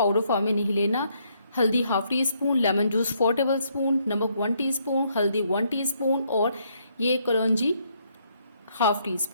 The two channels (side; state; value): both; inverted; correlation -0.71